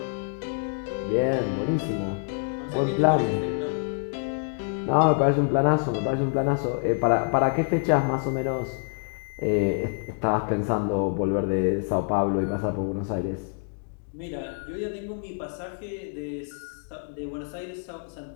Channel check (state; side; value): silent; right; 60 dB below the other